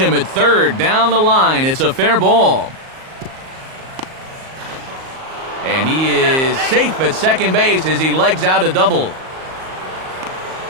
at third. Down the line, it's a fair ball. And he is safe at second base as he legs out a double.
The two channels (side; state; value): left; late; 38 ms